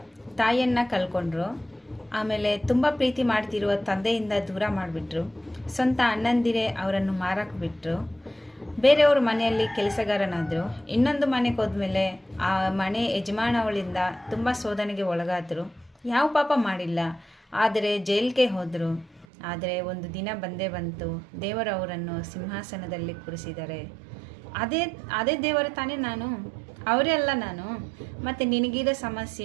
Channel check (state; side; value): drops out; left; at 19.2 s